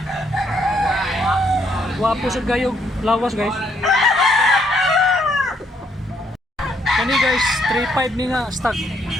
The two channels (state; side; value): normal; both; correlation 0.71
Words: Guwapo sa gayog, lawas guys. Kani guys, 3.5 ni nga stag.